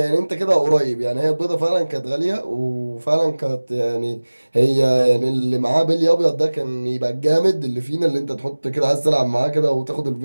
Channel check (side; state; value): both; inverted; correlation -1.00